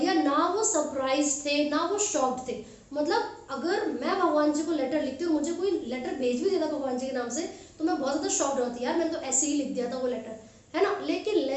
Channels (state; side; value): identical; both; correlation 1.00